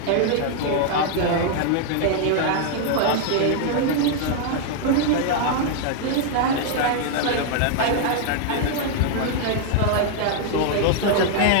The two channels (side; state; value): both; different; correlation 0.00